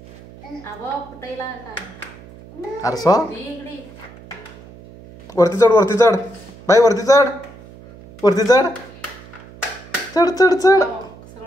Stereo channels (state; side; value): noise; right; hum, 20 dB below the sound